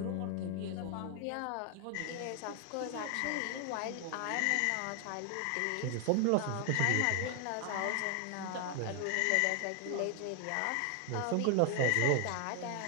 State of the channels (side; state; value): both; different; correlation 0.00